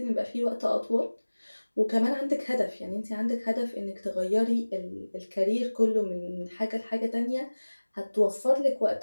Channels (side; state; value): both; inverted; correlation -1.00